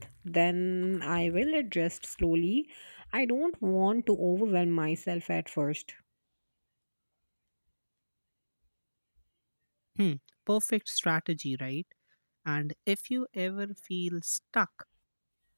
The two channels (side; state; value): both; inverted; correlation -1.00